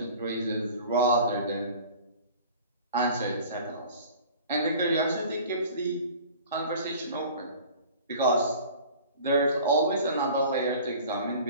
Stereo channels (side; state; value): both; inverted; correlation -0.44